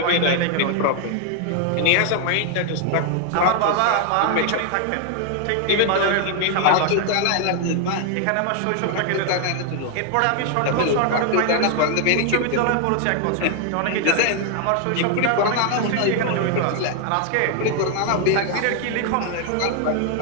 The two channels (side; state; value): both; different; correlation 0.00